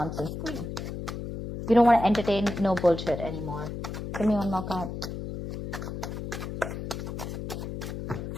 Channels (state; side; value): noise; left; hum, 6 dB below the sound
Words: queen. You don't want to entertain no bullshit anymore. Give me one more card.